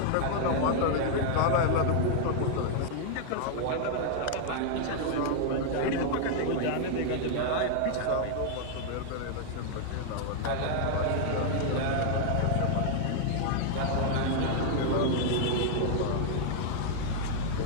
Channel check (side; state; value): both; different; correlation 0.00